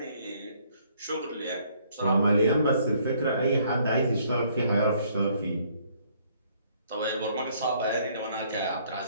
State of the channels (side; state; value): both; inverted; correlation -0.64